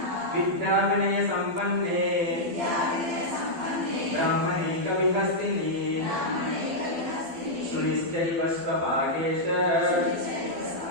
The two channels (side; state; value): left; late; 12 ms